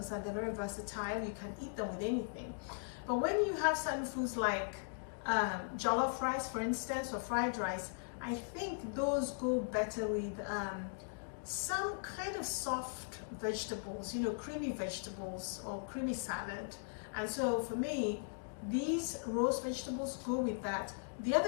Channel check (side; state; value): right; silent; digital silence